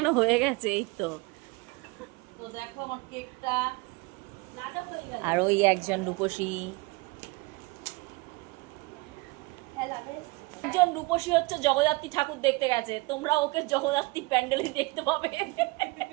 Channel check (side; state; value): left; quieter; 24.6 dB